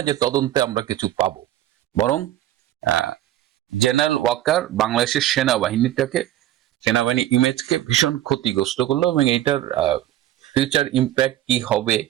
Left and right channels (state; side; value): quieter; left; 13.3 dB